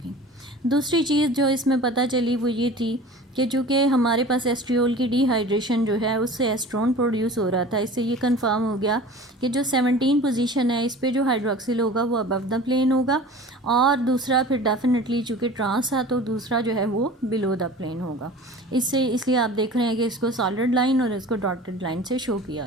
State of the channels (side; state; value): both; normal; correlation 0.40